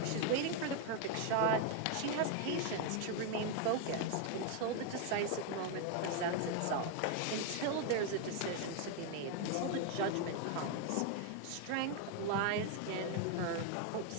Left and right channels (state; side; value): different; both; correlation 0.01